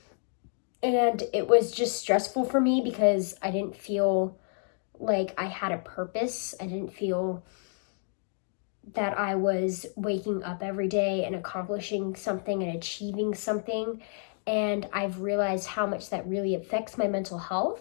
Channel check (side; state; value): right; silent; 58 dB below the other